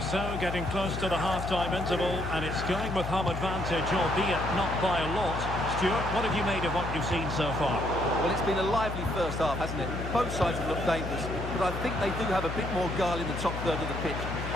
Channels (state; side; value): noise; left; hum, 5 dB below the sound